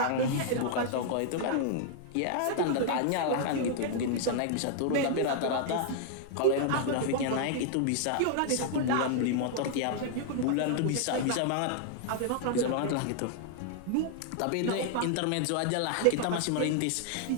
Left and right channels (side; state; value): both; different; correlation -0.01